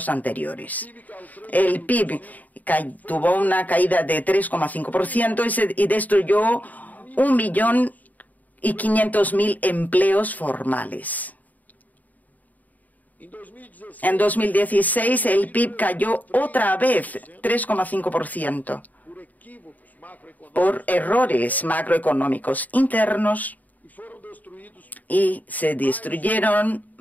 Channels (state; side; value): late; right; 0.078 ms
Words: anteriores. El PIB tuvo una caída de 3,5% y destruyó 1.500.000 empleos formales. En 2016, el PIB cayó otra vez 3,5% por errores macroeconómicos internos y se destruyeron